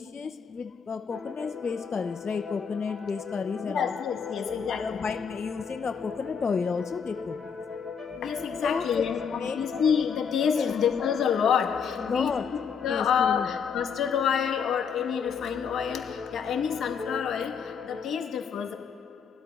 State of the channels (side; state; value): right; quieter; 6.6 dB